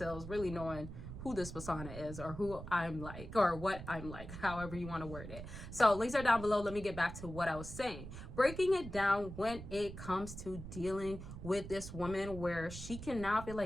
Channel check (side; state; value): right; noise; rumble, 10 dB below the sound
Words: really knowing who this persona is, or who I'm like, or what I'm like, however you want to word it. So links are down below. Let me get back to what I was saying. Breaking it down when it comes to dealing with this woman where she can now be